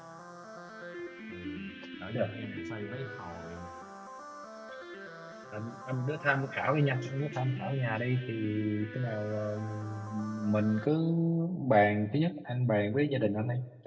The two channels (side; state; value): both; identical; correlation 1.00